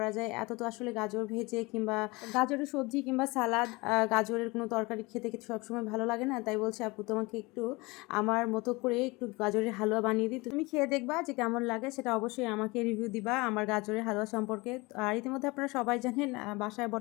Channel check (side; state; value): right; quieter; 24.2 dB